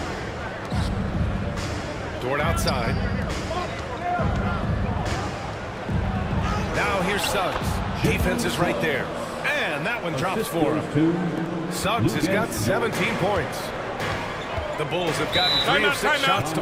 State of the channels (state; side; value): identical; both; correlation 1.00